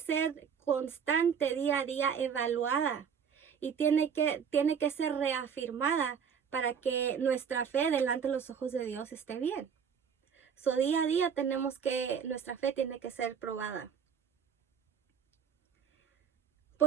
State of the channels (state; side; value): quieter; left; 7.2 dB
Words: constante día a día, evaluada. Y tiene que ser reafirmada para que nuestra fe delante de los ojos de Dios esté bien. Día a día nuestra fe tiene que ser probada.